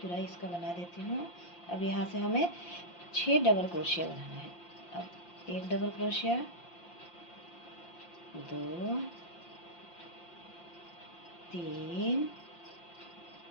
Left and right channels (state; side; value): late; right; 5.7 ms